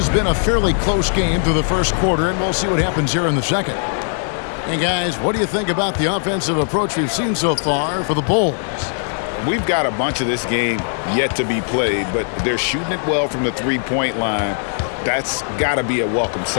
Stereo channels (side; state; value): right; silent; digital silence